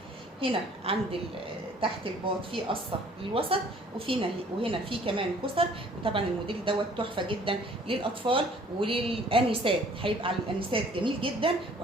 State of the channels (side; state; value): both; normal; correlation 0.55